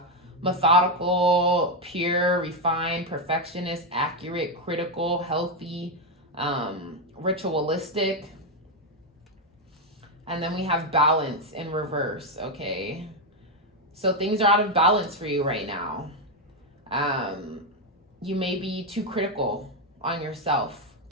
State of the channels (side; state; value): both; normal; correlation 0.05